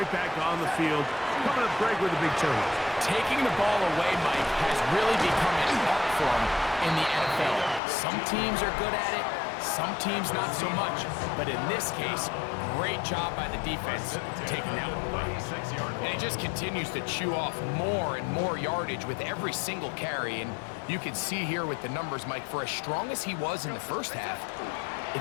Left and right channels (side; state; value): right; drops out; at 7.8 s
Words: back on the field. Coming up, Greg, with a big turnover. Taking the ball away, Mike, has really become an art form in the NFL. Some teams are good at it, some teams not so much. But in this case, great job by the defense taking that one away. And he just continues to chew off more and more yardage with every single carry. And you can see here with the numbers, Mike, for as strong as he was in the first half,